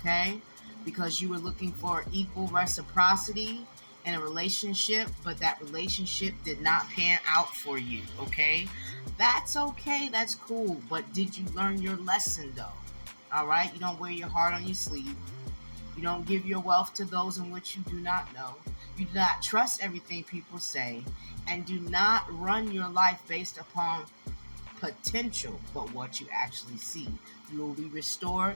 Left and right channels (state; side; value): inverted; both; correlation -1.00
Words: because you were looking for equal reciprocity in a relationship, but that relationship did not pan out for you, okay? That's okay, that's cool, but did you learn your lesson though? All right, you don't wear your heart on your sleeve. You don't give your wealth to those in which you do not know. You do not trust everything people say, and do not run your life based upon potential, but what you actually see. You will be